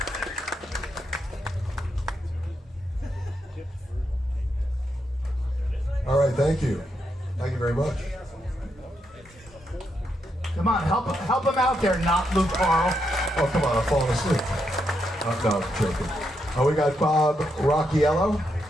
All right, thank you. Thank you very much. Come on, help him out there, not Luke Carl. Oh, come on, I'm falling asleep. No, I'm joking. Oh, we got Bob Rocchiello.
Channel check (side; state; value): both; normal; correlation 0.81